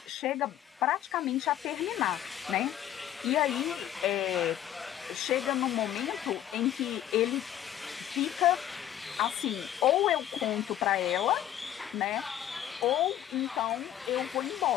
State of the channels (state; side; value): quieter; right; 11.5 dB